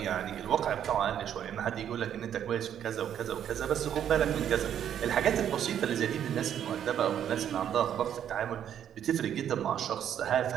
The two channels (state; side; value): quieter; left; 9.6 dB